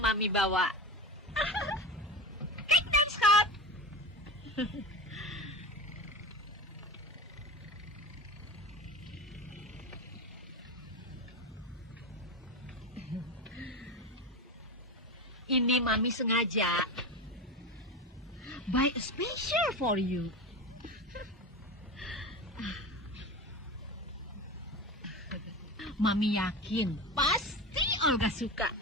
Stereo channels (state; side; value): normal; both; correlation 0.25